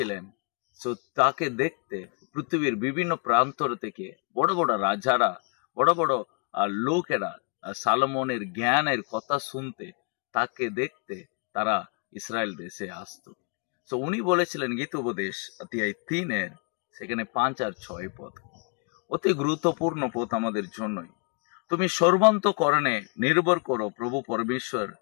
তো তাকে দেখতে পৃথিবীর বিভিন্ন প্রান্তর থেকে বড় বড় রাজারা, বড় বড় লোকেরা সালোমনের জ্ঞানের কথা শুনতে, তাকে দেখতে তারা ইসরায়েল দেশে আসতো। তো উনি বলেছিলেন গীতোপদেশ অধ্যায় 3 সেখানে 5 আর 6 পদ, অতি গুরুত্বপূর্ণ পদ আমাদের জন্যই। তুমি সর্বান্তকরণে নির্ভর করো প্রভু পরমেশ্বর,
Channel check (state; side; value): quieter; right; 36.6 dB